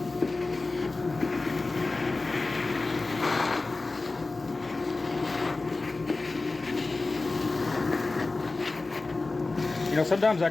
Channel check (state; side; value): quieter; right; 3.4 dB